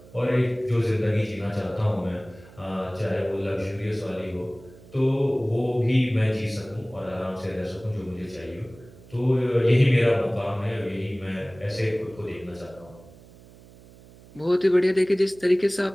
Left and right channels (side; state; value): right; noise; hum, 22 dB below the sound